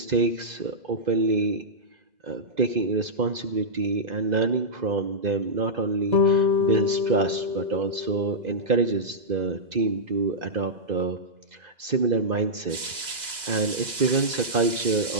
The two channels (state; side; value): late; left; 2.0 ms